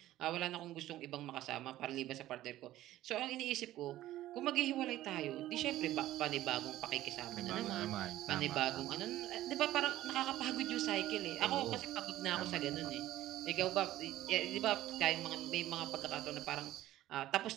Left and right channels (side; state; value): left; quieter; 14.6 dB